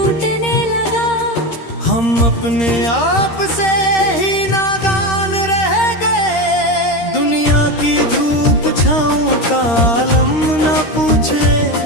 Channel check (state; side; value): late; right; 13 ms